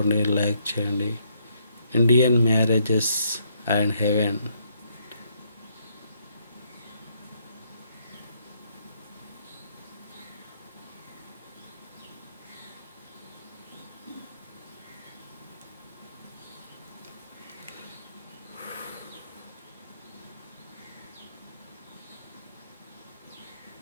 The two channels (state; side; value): inverted; both; correlation -0.72